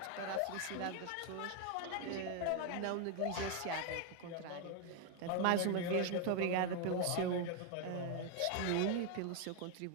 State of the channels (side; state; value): both; different; correlation 0.01